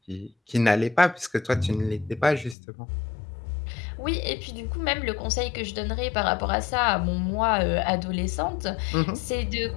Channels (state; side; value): drops out; right; at 2.6 s